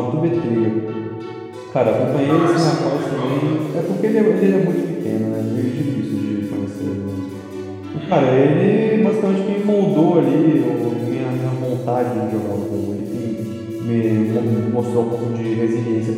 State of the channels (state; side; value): identical; both; correlation 1.00